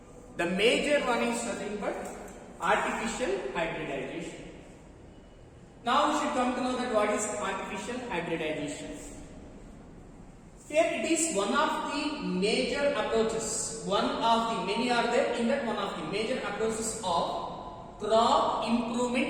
The major one is nothing but artificial hybridization. Now we should come to know that what is artificial hybridization. Here it is one of the major approaches. One of the many are there. In that, one of the major approaches of crop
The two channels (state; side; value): identical; both; correlation 1.00